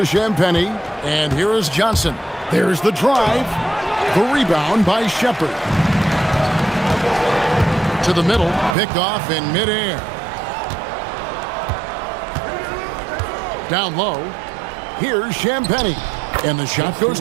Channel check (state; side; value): drops out; left; at 8.8 s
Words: Champagnie, and here is Johnson. There's the drive. The rebound by Shepard. To the middle, picked off in midair. Down low, here's Champagnie, and the shot goes